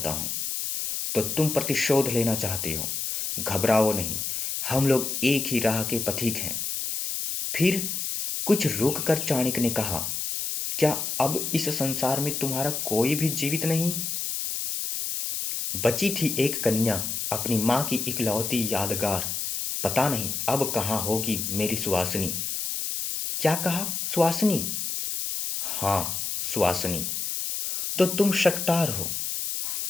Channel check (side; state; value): left; noise; hiss, 2 dB below the sound